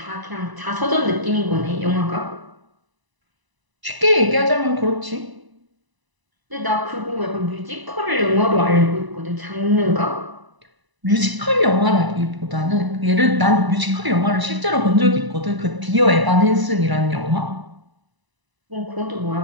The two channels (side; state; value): left; late; 1.0 ms